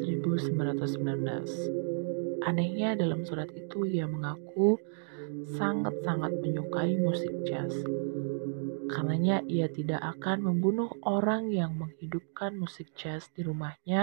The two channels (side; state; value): left; silent; digital silence